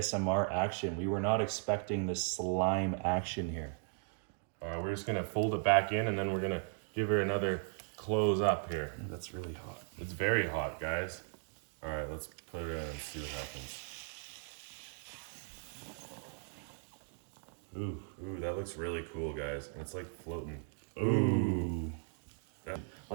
action. We were not expecting this slime action here. All right, we're just gonna fold it back in and then we're gonna give her another close up here. That's really hot. It's very hot, guys. All right, let's put it in and see what happens. Ooh, that looks really cool, guys. And it's like floating. Ooh. Yeah.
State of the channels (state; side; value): silent; left; 53 dB below the other